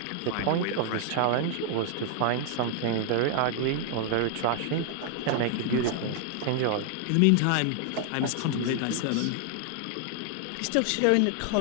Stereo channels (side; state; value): both; different; correlation 0.00